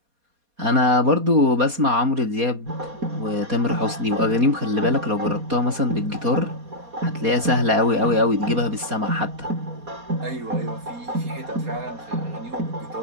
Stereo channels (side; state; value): left; late; 4.2 ms